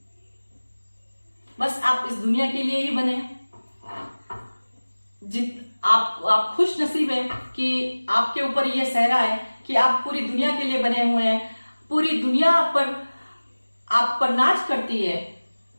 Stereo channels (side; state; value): both; inverted; correlation -1.00